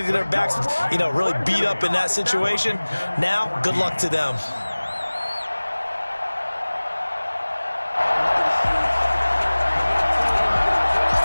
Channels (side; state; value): both; inverted; correlation -1.00